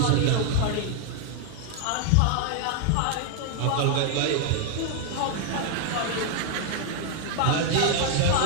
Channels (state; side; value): different; both; correlation 0.00